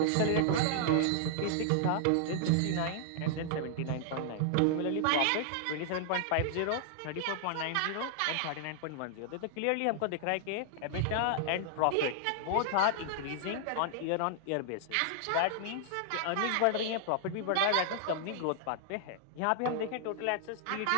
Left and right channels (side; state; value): both; different; correlation -0.01